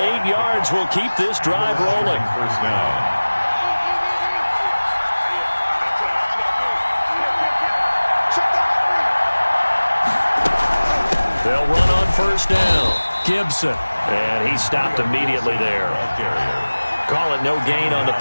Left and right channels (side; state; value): both; inverted; correlation -1.00